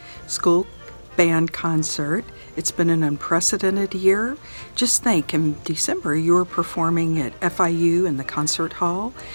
school band concert. It's been an unprecedented year. Just think, in December you were performing at FIU in the concert hall.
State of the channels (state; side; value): inverted; both; correlation -1.00